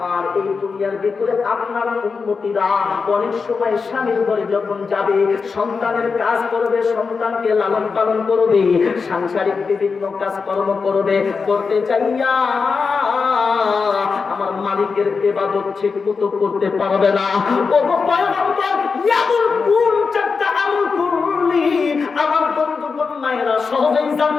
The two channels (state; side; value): quieter; right; 5.0 dB